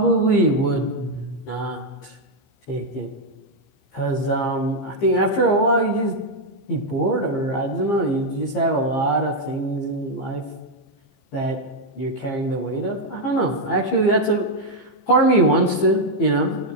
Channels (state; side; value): late; right; 15 ms